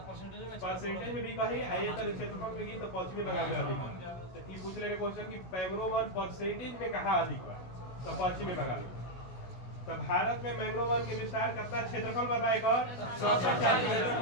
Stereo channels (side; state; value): right; late; 16 ms